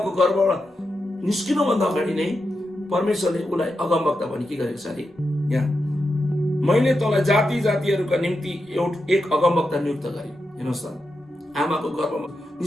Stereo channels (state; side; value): normal; both; correlation 0.87